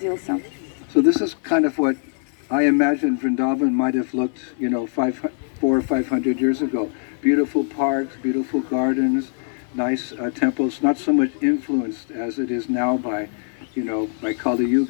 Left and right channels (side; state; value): right; silent; 59 dB below the other